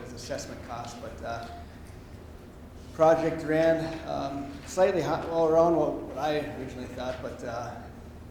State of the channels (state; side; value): identical; both; correlation 1.00